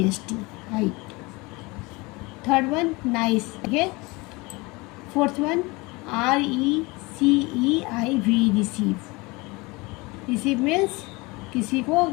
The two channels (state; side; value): quieter; right; 24.5 dB